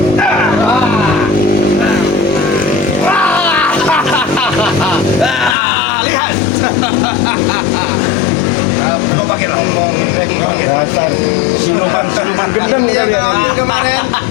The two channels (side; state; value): right; drops out; at 5.6 s